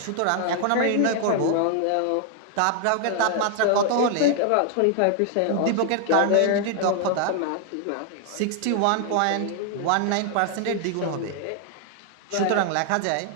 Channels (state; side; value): different; both; correlation 0.00